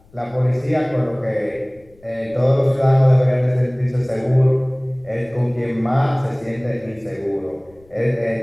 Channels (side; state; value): left; noise; rumble, 29 dB below the sound